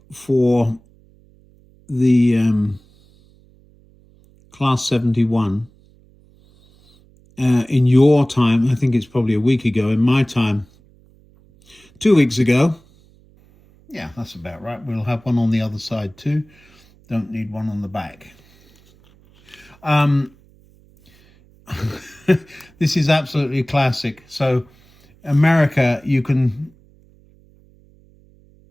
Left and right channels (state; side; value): noise; right; hum, 29 dB below the sound